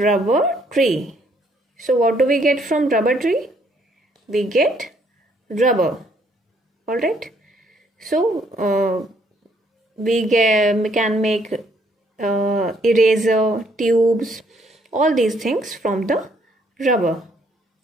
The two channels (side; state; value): both; normal; correlation 0.67